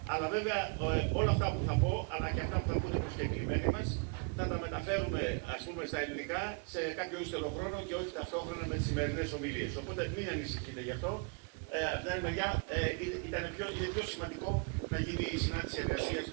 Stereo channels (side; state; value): left; quieter; 35.1 dB